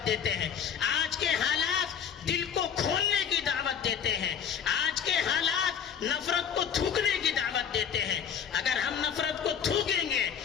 دیتے ہیں. آج کے حالات دل کو کھولنے کی دعوت دیتے ہیں. آج کے حالات نفرت کو تھوکنے کی دعوت دیتے ہیں. اگر ہم نفرت کو تھوکیں گے,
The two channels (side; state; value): right; quieter; 7.9 dB